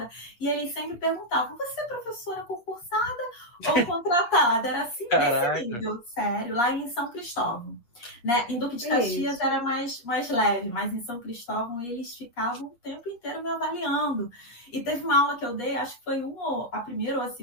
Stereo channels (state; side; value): late; right; 8.6 ms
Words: e eles sempre perguntavam, você é professora concursada ou contratada? Era assim, nesse nível, sério, lá em São Cristóvão. Né? Em Duque de Caxias Isso. era mais leve, mas em São Cristóvão eles ficavam o tempo inteiro me avaliando. E teve uma aula que eu dei, acho que foi a primeira ou a